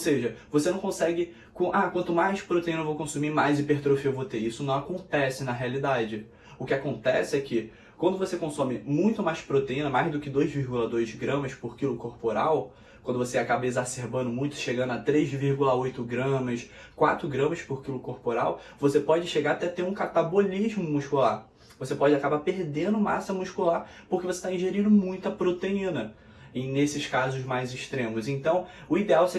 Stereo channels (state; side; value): identical; both; correlation 1.00